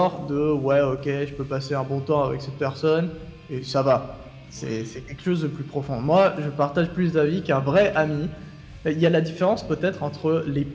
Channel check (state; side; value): identical; both; correlation 1.00